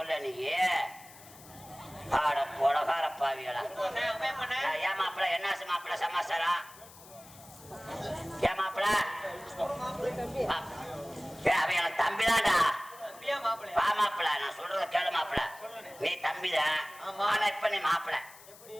நீ ஆட பொலகார பாவிகளா ஏன் மாப்பிள என்ன மாப்பிள சமாச்சாரம் ஏன் மாப்பிள அவன் எனக்கு தம்பிதான்டா வா மாப்பிள நான் சொல்றத கேளு மாப்பிள நீ தம்பிதான் ஆனா இப்ப நீ மாப்பிள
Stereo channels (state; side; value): noise; left; hiss, 20 dB below the sound